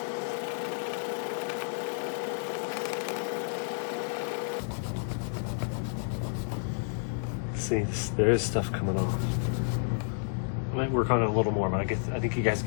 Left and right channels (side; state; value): right; silent; digital silence